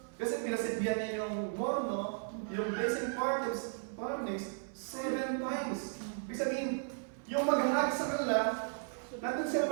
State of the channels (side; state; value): left; silent; 54 dB below the other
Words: kasi pinasitbihan niya yung morno, yung blessing furnace, 7 times. Ibig sabihin, yung maghahag sa kanila, nandun sila